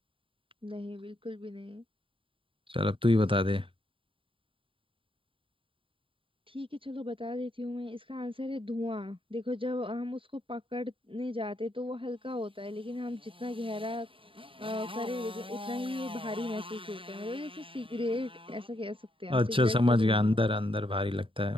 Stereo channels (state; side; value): late; left; 0.25 ms